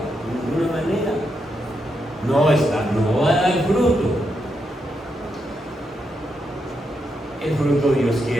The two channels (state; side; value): normal; both; correlation 0.83